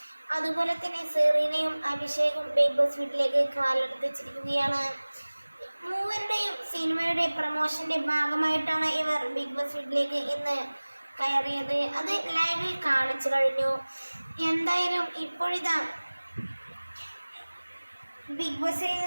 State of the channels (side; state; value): both; inverted; correlation -1.00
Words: അതുപോലെ തന്നെ സെറീനയും അഭിഷേകും ബിഗ് ബോസ് വീട്ടിലേക്ക് കാലെടുത്ത് വെച്ചിരിക്കുകയാണ്. മൂവരുടെയും സിനിമയുടെ പ്രമോഷന്റെ ഭാഗമായിട്ടാണ് ഇവർ ബിഗ് ബോസ് വീട്ടിലേക്ക് ഇന്ന് കയറിയത്. അത് ലൈവിൽ കാണിച്ചു കഴിഞ്ഞു. എന്തായാലും ഇപ്പോഴിതാ ബിഗ് ബോസിൽ